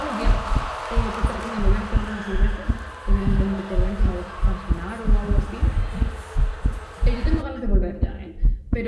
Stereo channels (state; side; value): identical; both; correlation 1.00